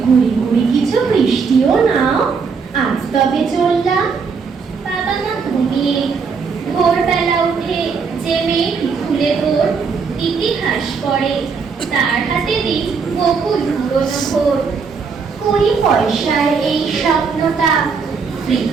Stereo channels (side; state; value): left; quieter; 5.4 dB